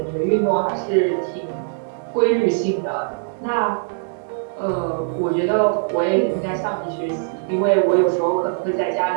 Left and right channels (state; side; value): silent; left; digital silence